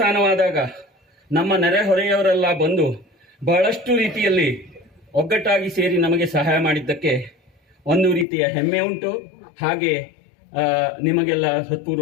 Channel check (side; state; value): right; drops out; at 8.2 s